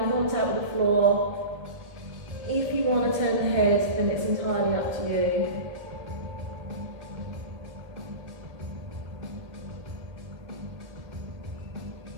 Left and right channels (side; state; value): left; late; 1.7 ms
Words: in contact with the floor. If you want to turn the head, then it's entirely up to you.